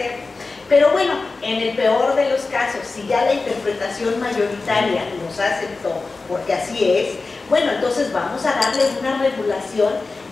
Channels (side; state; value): right; quieter; 3.8 dB